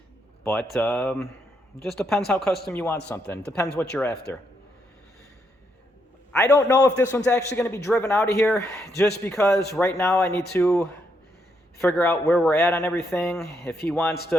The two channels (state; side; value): normal; both; correlation 0.77